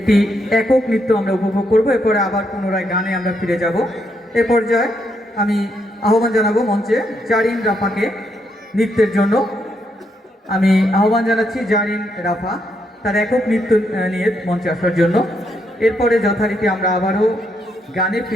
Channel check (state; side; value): normal; both; correlation 0.77